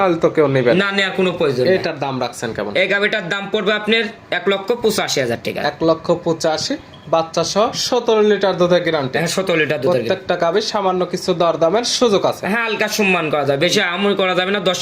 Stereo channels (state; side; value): identical; both; correlation 1.00